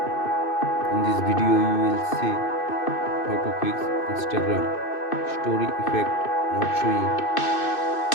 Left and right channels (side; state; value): right; late; 2.6 ms